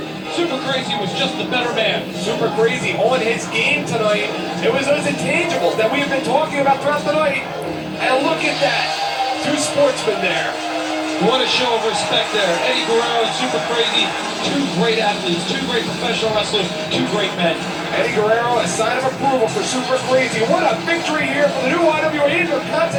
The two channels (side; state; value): both; identical; correlation 1.00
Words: Super Crazy was just the better man. Super Crazy on his game tonight. It was those intangibles that we've been talking about throughout the night. And look at that. 2 sportsmen there. What a show of respect there. Eddie Guerrero and Super Crazy, 2 great athletes, 2 great professional wrestlers, 2 great men. Eddie Guerrero, a sign of approval for Super Crazy. What a victory here for the new IWA